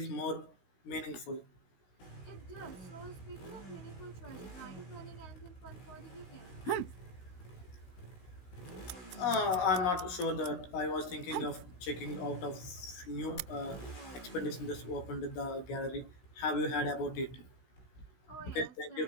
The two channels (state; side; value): late; right; 16 ms